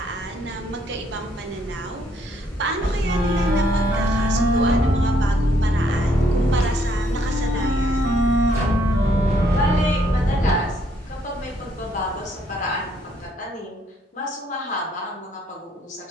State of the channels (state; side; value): normal; both; correlation 0.69